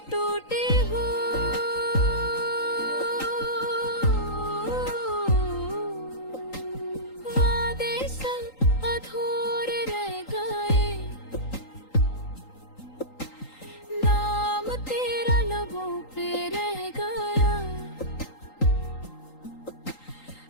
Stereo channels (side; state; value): right; late; 3.8 ms